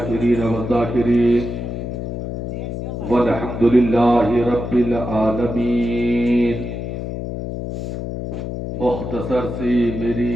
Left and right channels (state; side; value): noise; left; hum, 5 dB below the sound